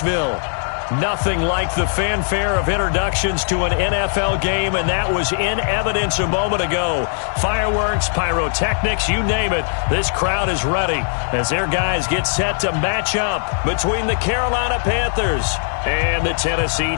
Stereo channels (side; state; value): right; silent; 57 dB below the other